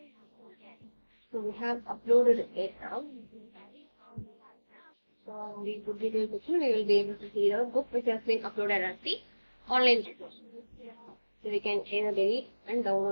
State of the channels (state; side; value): inverted; both; correlation -1.00